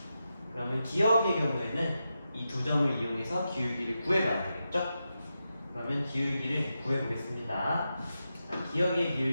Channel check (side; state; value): both; inverted; correlation -0.89